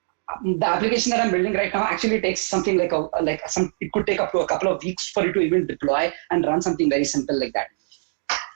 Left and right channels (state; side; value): silent; left; digital silence